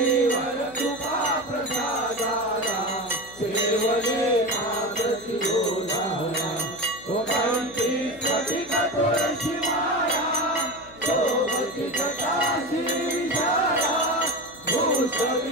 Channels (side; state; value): left; noise; hum, 22 dB below the sound